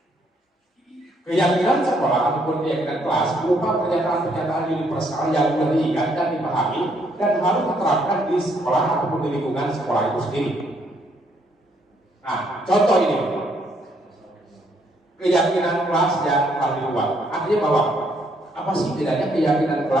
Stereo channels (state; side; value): normal; both; correlation 0.70